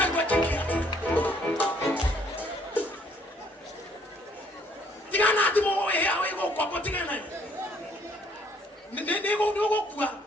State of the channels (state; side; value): normal; both; correlation 0.64